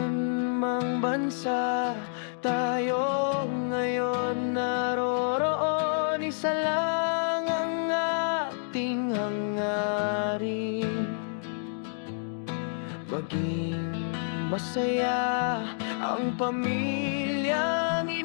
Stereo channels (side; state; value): right; silent; digital silence